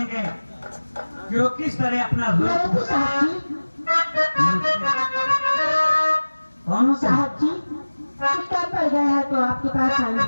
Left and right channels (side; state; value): both; inverted; correlation -1.00